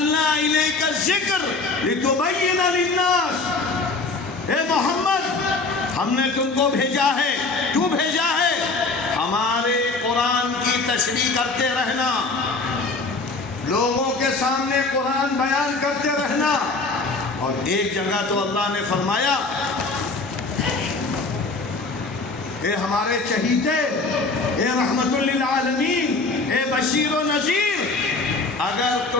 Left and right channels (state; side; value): quieter; right; 3.7 dB